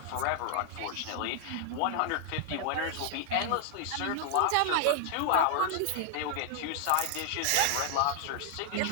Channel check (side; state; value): both; different; correlation 0.00